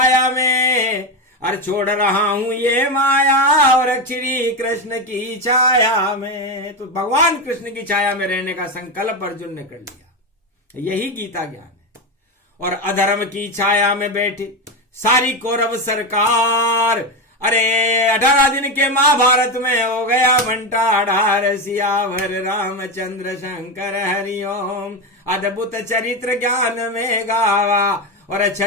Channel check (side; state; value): both; normal; correlation 0.14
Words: में, और छोड़ रहा हूं ये माया, और श्री कृष्ण की छाया में। तो भगवान कृष्ण की छाया में रहने का संकल्प अर्जुन ने कर लिया। यही गीता ज्ञान है। और अधर्म की छाया में बैठे सारी कौरव सरकार, अरे 18 दिन के महाभारत में हो गया घंटा ढार, सियावर रामचंद्र शंकर हरिओम। अद्भुत चरित्र ज्ञान में गावा और